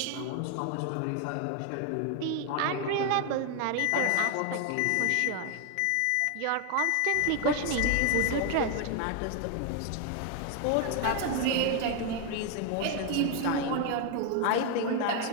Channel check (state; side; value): different; both; correlation 0.01